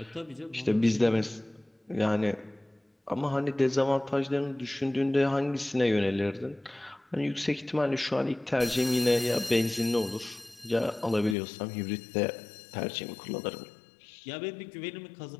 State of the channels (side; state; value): right; drops out; at 11.4 s